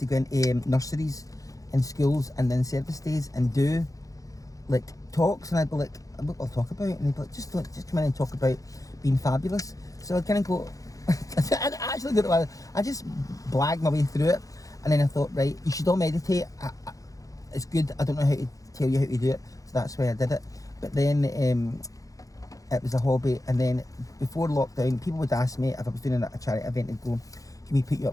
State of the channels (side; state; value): right; late; 0.17 ms